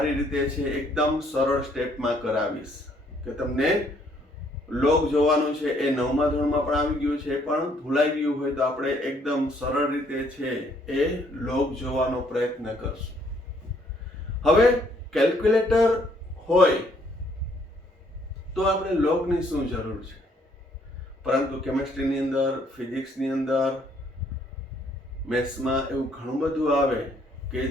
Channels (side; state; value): both; normal; correlation 0.67